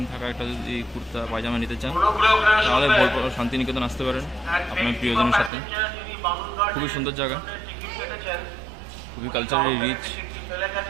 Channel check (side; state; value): left; drops out; at 5.5 s